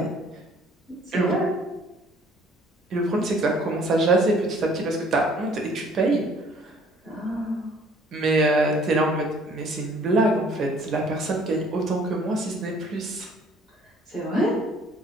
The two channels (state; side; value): normal; both; correlation 0.57